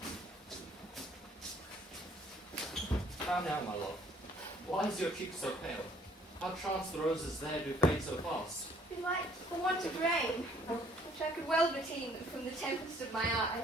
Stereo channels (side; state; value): both; normal; correlation 0.60